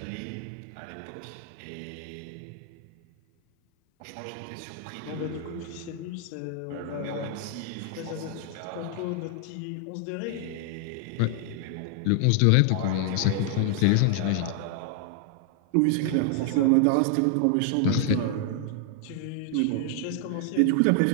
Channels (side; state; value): both; different; correlation 0.00